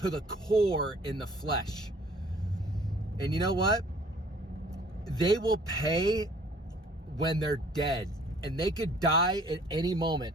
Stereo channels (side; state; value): both; normal; correlation 0.55